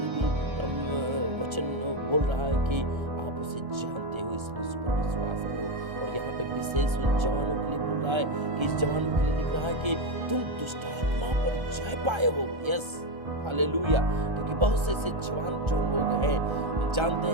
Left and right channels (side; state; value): left; late; 1.3 ms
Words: भी वचन बोल रहा है कि आप उसे जानते हो, इसलिए उस पर विश्वास करो। और यहाँ पे विशेष उन जवानों के लिए बोल रहा है कि इस जवानों के लिए लिख रहा है कि तुम दुष्ट आत्मा पर जय पाए हो। यस हालेलुया, क्योंकि बहुत से ऐसे जवान जो लोग हैं, जानते